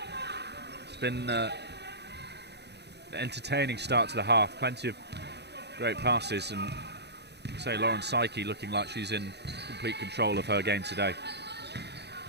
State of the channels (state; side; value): late; left; 0.49 ms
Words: It's been an entertaining start to the half. Plenty of great passes, and say, Lauren Psyche looking like she's in complete control of her game today.